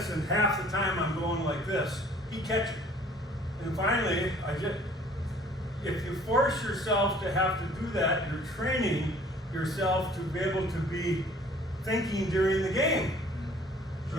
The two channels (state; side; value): normal; both; correlation 0.54